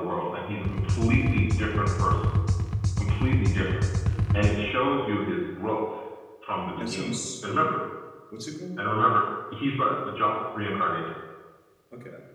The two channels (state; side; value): identical; both; correlation 1.00